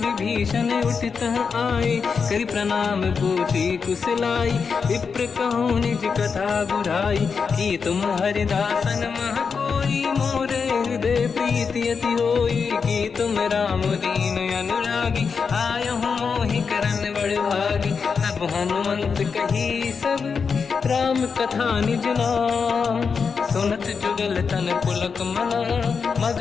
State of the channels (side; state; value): right; quieter; 5.6 dB